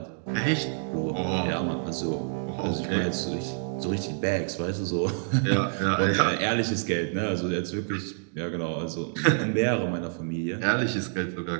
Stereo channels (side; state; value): left; silent; digital silence